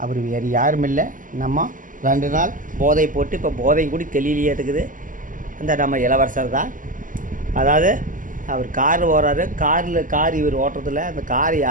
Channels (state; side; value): late; left; 0.38 ms